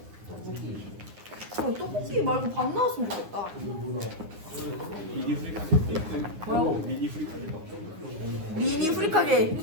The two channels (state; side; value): late; left; 9.8 ms